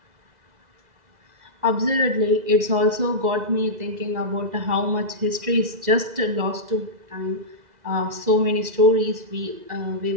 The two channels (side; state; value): left; late; 2.0 ms